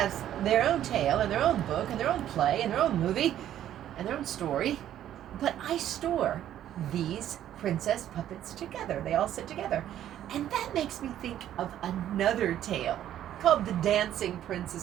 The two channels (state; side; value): quieter; left; 11.5 dB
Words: their own tale and their own book and their own play and their own movie and their own story. But I store these princess puppets together. They all sit together. And that makes me think of another tale called The Dancing